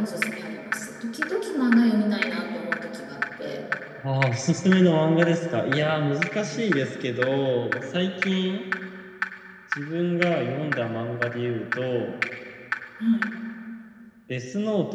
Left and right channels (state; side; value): identical; both; correlation 1.00